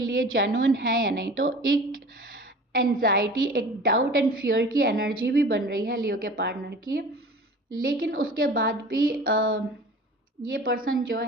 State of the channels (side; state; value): both; normal; correlation 0.41